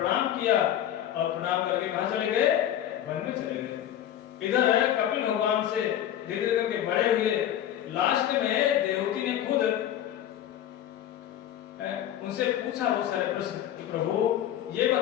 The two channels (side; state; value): right; quieter; 11.3 dB